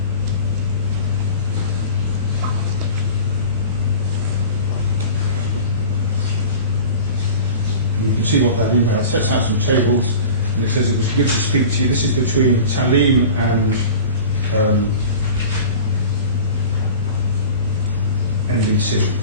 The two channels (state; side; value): inverted; both; correlation -0.37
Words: And you can see what that email sets out some tables. And it says it was good to speak to you. This is between Taaleem and NBC.